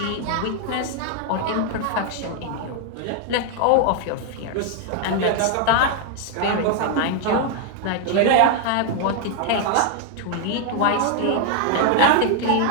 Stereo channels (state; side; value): different; both; correlation 0.00